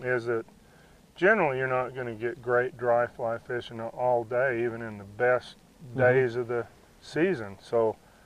is that generally you're not going to get great dry fly fishing all day, even in the best days of the season. So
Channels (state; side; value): identical; both; correlation 1.00